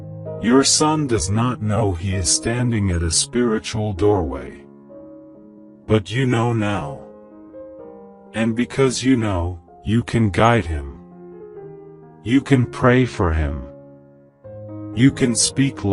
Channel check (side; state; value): both; identical; correlation 1.00